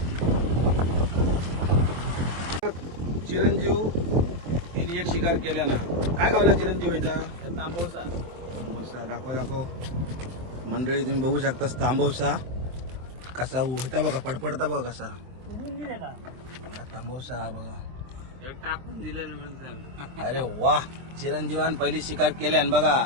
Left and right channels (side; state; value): left; late; 23 ms